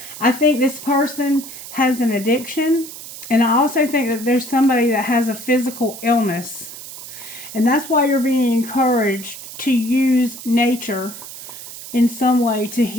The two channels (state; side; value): noise; right; hiss, 13 dB below the sound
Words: I think this person has an addiction, and I also think that there's somebody that has a physical illness. And that's why you're being encouraged to use nature in some way to